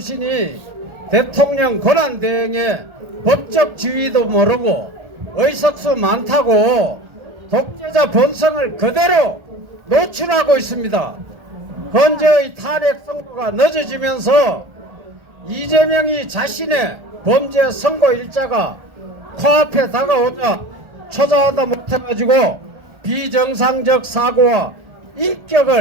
대통령 권한 대행의 법적 지위도 모르고 의석수 많다고 독재자 본성을 그대로 노출하고 있습니다. 현재의 탄핵 선고가 늦어지면서 이재명이 자신의 범죄 선고 일자가 코앞에 다가오자 초자하다 못해가지고 비정상적 사고와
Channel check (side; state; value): left; late; 1.4 ms